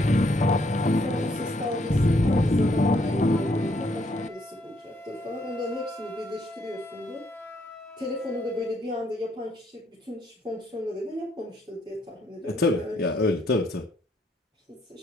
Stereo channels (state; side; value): normal; both; correlation 0.71